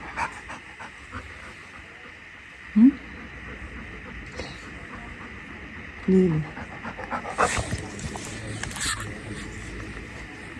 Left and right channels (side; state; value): both; identical; correlation 1.00